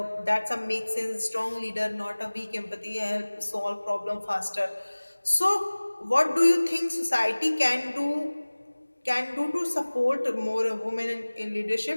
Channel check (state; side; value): inverted; both; correlation -1.00